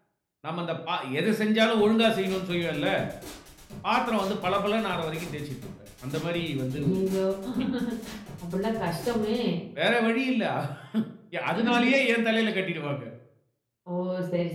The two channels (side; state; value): both; identical; correlation 1.00